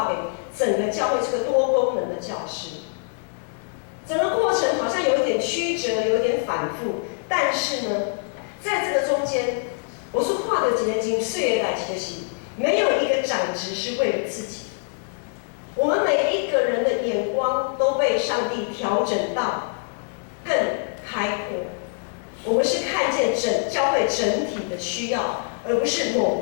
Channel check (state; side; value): silent; right; digital silence